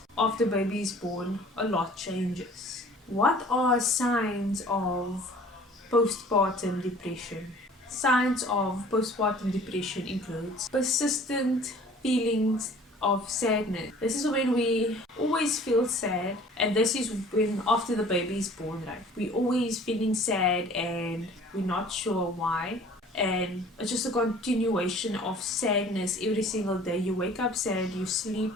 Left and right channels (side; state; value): both; normal; correlation 0.50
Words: after baby is born, a lot changes. What are signs of postpartum depression? Signs of postpartum depression includes persistent feelings of sadness. This is when we always feel sad, and this is when after the baby is born, right? We always feeling sad and we're not sure why. And it's just a continuation of sadness every single day. You wake up sad, you sleep,